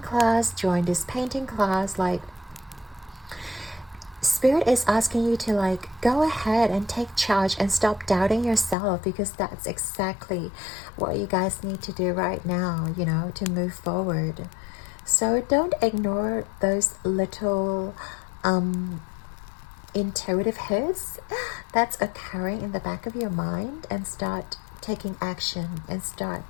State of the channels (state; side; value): drops out; right; at 8.8 s